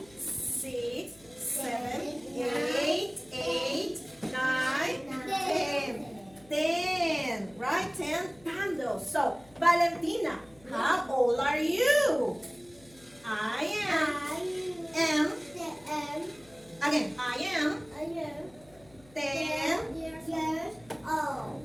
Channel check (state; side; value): noise; left; hum, 26 dB below the sound